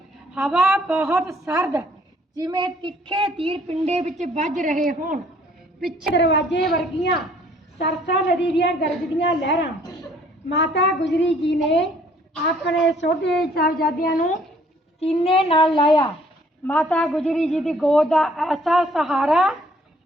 ਹਵਾ ਬਹੁਤ ਸਰਦ, ਜਿਵੇਂ ਤਿੱਖੇ ਤੀਰ ਪਿੰਡੇ ਵਿੱਚ ਵੱਜ ਰਹੇ ਹੋਣ। ਪਿੱਛੇ ਦਰਵਾਜ਼ੇ ਵਰਗੀਆਂ ਸਰਸਾ ਨਦੀ ਦੀਆਂ ਗਰਜਦੀਆਂ ਲਹਿਰਾਂ। ਮਾਤਾ ਗੁਜਰੀ ਜੀ ਨੇ ਆਪਣੇ ਛੋਟੇ ਸਾਹਿਬਜ਼ਾਦਿਆਂ ਨੂੰ ਸੀਨੇ ਨਾਲ ਲਾਇਆ। ਮਾਤਾ ਗੁਜਰੀ ਜੀ ਦੀ ਗੋਦ ਦਾ ਐਸਾ ਸਹਾਰਾ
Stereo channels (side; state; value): both; normal; correlation 0.60